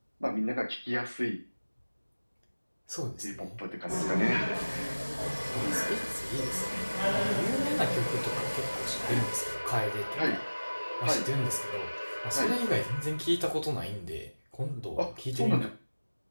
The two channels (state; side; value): inverted; both; correlation -1.00